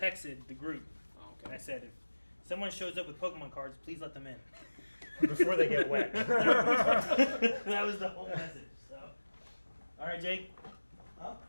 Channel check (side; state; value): both; inverted; correlation -1.00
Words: the group Oh, and okay. I said, if someone shows up with Pokemon cards, please let them in. Before they get wet. That was the whole message. So, all right, Jake. Huh?